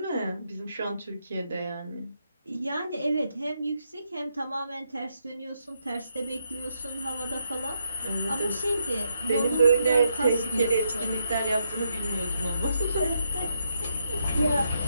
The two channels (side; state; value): both; inverted; correlation -0.78